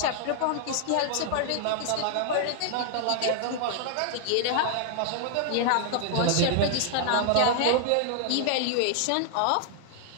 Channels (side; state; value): both; different; correlation 0.00